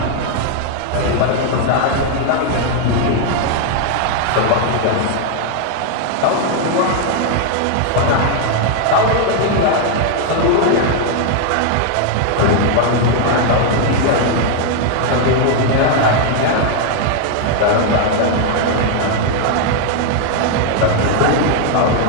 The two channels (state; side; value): different; both; correlation 0.00